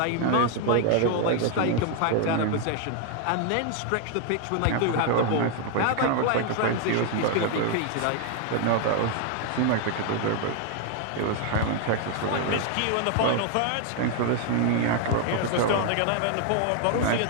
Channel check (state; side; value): different; both; correlation 0.00